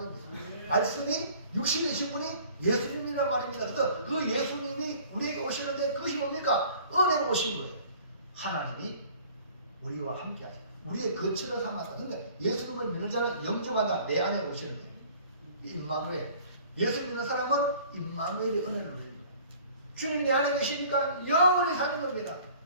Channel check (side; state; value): both; inverted; correlation -0.50